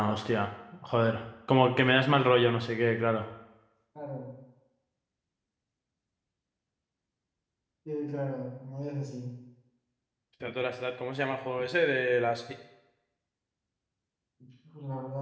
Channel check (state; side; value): identical; both; correlation 1.00